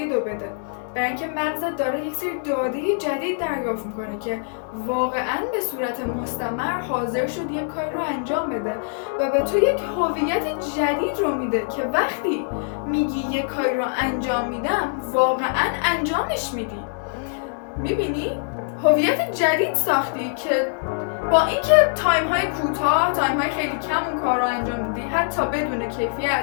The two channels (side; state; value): right; silent; 63 dB below the other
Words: رو بده. برای اینکه مغزت داره یک سری داده جدید دریافت میکنه که واقعا به صورت مستمر حاضر شد یک کار رو انجام بده و به تو یک هویت جدید رو میده که وقتی میگی یک کار رو انجام میدم واقعا انجامش میدی. میبینی؟ هویت جدید ساختی که با اینکه تایم های کوتاه، تایم های خیلی کم اون کار رو انجام میدی حتی بدون